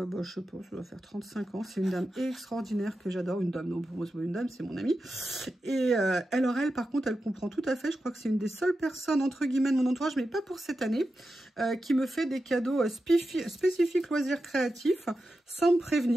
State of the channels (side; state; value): both; normal; correlation 0.90